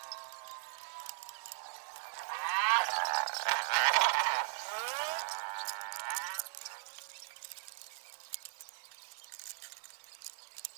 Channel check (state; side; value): silent; left; digital silence